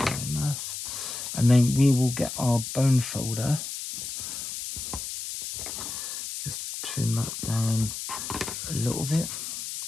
enough. And then we will get our bone folder. Just trim that down a little bit.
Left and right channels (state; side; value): noise; left; hiss, 6 dB below the sound